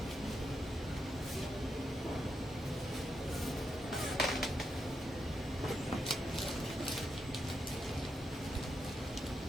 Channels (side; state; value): both; normal; correlation 0.83